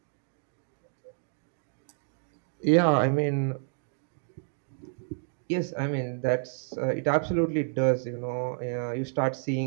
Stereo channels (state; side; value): silent; left; digital silence